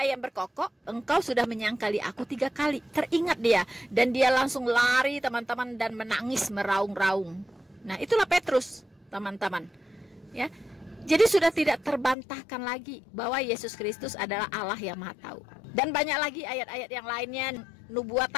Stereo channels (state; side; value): drops out; right; at 12.2 s